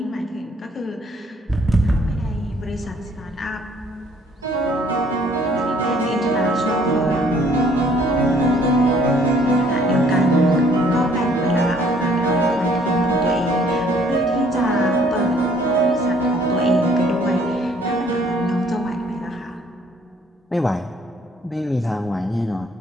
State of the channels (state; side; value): normal; both; correlation 0.61